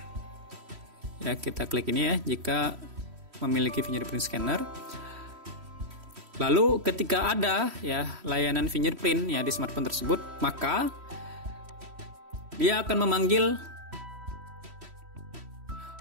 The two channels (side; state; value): left; late; 3.1 ms